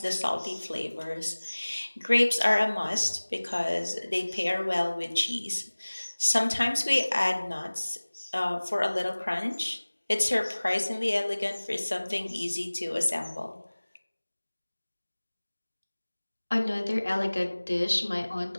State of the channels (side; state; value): both; inverted; correlation -1.00